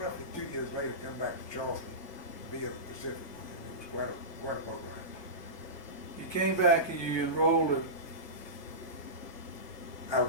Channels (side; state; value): right; late; 1.2 ms